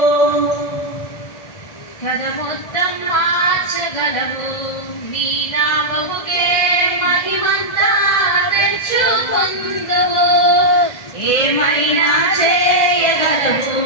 కథ మొత్తం మార్చగలవు, నీ నామముకే మహిమంతా తెచ్చుకొందువు. ఏమైనా చేయగలవు,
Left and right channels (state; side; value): late; right; 1.8 ms